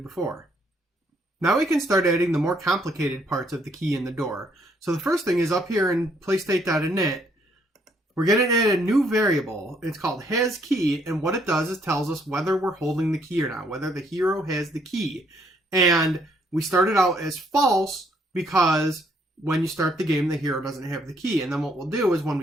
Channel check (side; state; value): both; normal; correlation 0.69